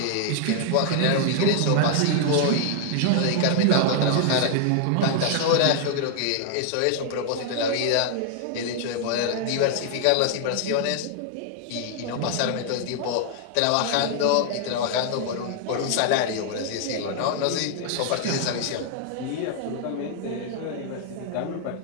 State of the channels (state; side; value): different; both; correlation 0.00